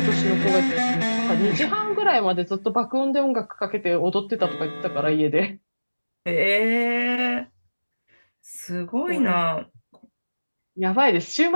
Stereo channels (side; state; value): both; inverted; correlation -1.00